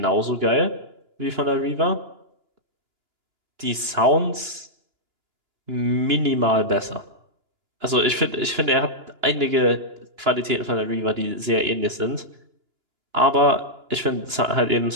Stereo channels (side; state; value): left; late; 2.9 ms